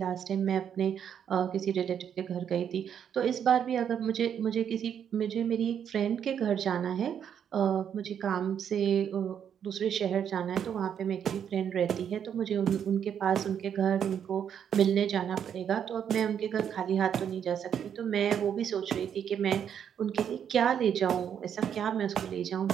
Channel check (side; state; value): left; quieter; 8.5 dB